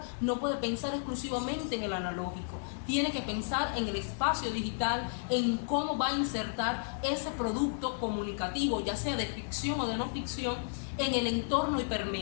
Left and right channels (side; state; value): right; silent; digital silence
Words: no puede pensar exclusivamente en el analógico. Tiene que pensar en el espacio digital, en cómo va a insertar ese producto comunicativo, ya sea de ficción o de no ficción, en el entorno